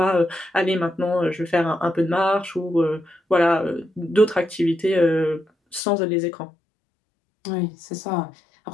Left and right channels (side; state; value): right; drops out; at 5.8 s